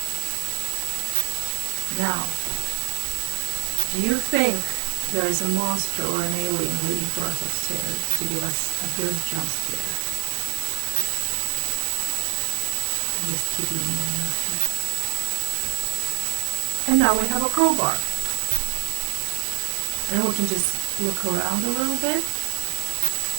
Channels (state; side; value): silent; left; 62 dB below the other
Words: Now, do you think there is a monster or an alien waiting for us upstairs to give us a good jump scare? Just keeping you on your feet. And now we have a crowbar. And we can just look around a little bit.